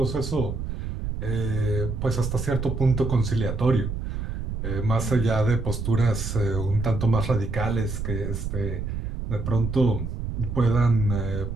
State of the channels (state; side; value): noise; right; rumble, 4 dB below the sound